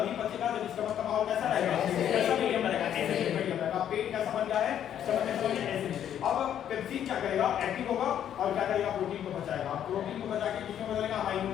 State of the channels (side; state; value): right; quieter; 10.0 dB